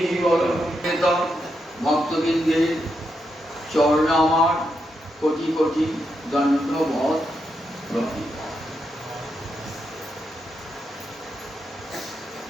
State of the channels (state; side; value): normal; both; correlation 0.83